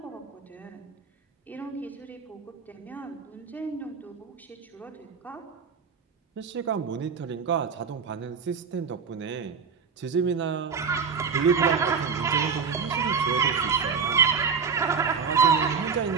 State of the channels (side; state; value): left; quieter; 5.8 dB